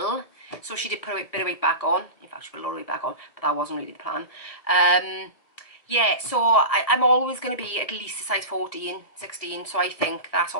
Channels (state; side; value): late; right; 1.6 ms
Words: So she did put a bit of weight back on. In fact, she put a lot of weight back on, but that wasn't really the plan. Yeah, so I'm always going to be at least a size 14, 16. So I think that's